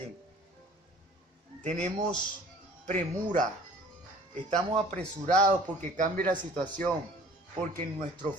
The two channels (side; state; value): both; normal; correlation 0.50